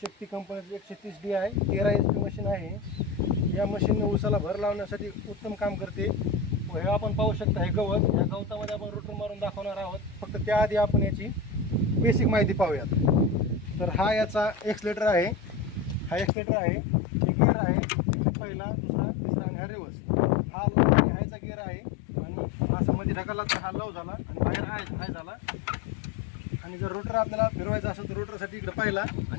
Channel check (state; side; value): drops out; right; at 16.3 s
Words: शक्ती कंपनीची 130D आहे, 13 HP मशीन आहे। या मशीनने ऊसाला भर लावण्यासाठी उत्तम काम करते। व हे आपण पाहू शकता, हे गवत, या गवतामध्ये आपण रोटर मारून दाखवणार आहोत। फक्त त्याआधी आपण याची बेसिक माहिती पाहूयात। तर हा याचा एक्सलेटर आहे, हा एक्सलेटर आहे, हे गिअर आहे, पहिला, दुसरा, तिसरा आणि हा रिवर्स। हा लो आणि हायचा गिअर आहे आणि असा मध्ये ढकलला तर हा लो झाला आणि बाहेर हाय झाला। आणि जर रोटर आपल्याला फिरवायचा असेल तर रोटरसाठी इकडे पहिला